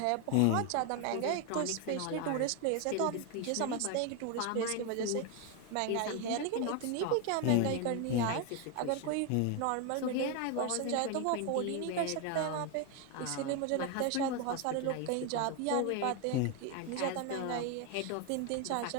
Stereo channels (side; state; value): both; different; correlation 0.01